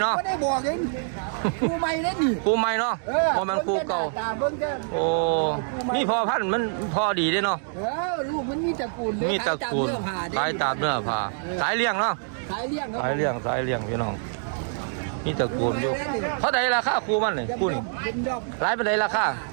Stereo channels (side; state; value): left; silent; digital silence